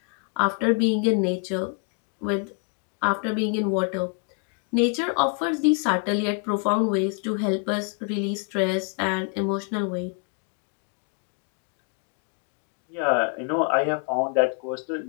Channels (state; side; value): quieter; right; 39.4 dB